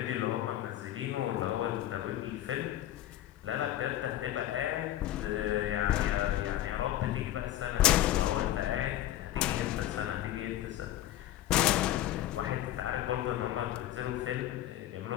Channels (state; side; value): quieter; right; 13.6 dB